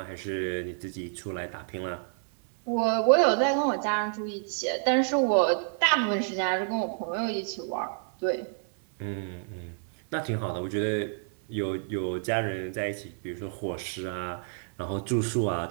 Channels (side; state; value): left; silent; 59 dB below the other